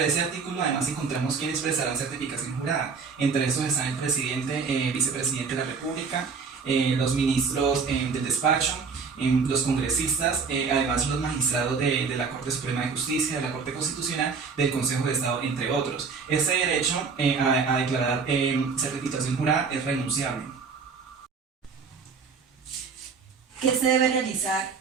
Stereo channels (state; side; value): quieter; left; 5.3 dB